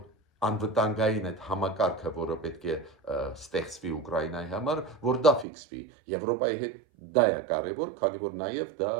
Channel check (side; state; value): left; drops out; at 5.5 s